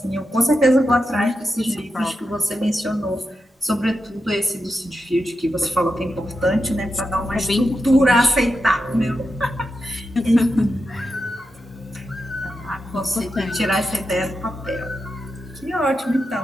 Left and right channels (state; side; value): normal; both; correlation 0.88